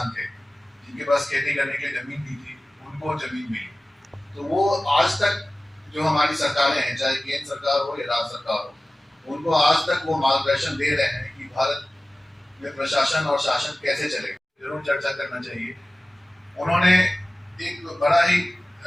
थे जिनके पास खेती करने के लिए जमीन भी थी, उनको जमीन मिली। तो वो आज तक जो हमारी सरकारें हैं, चाहे केंद्र सरकार हो या राज्य सरकार हो, उनको आज तक वो मार्गदर्शन दे रहे हैं कि भारत में प्रशासन और शासन कैसे चलेगा। जरूर चर्चा करना चाहिए। उन्होंने एक बड़ा ही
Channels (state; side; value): normal; both; correlation 0.97